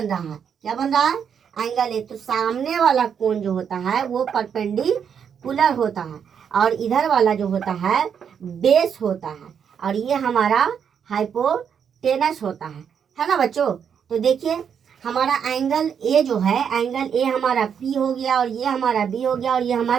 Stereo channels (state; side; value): quieter; left; 7.6 dB